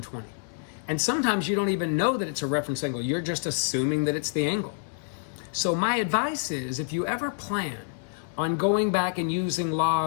And sometimes you don't even know that it's a reference angle. You're just assuming that it's the angle. So my advice is, if you ever plan on going back and using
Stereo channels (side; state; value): right; silent; 60 dB below the other